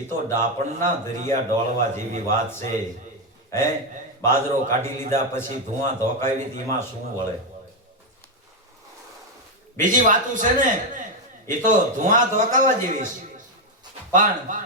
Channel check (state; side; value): normal; both; correlation 0.04